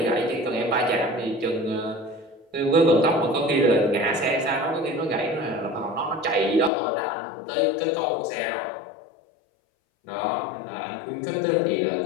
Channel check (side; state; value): right; drops out; at 6.7 s